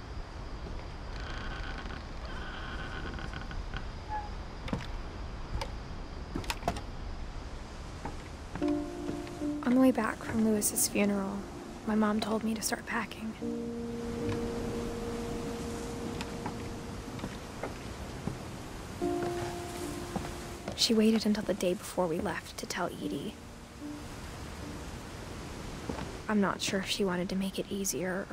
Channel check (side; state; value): both; identical; correlation 1.00